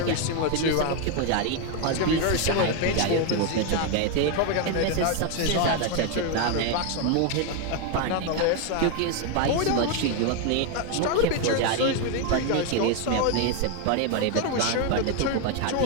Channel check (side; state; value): both; different; correlation 0.02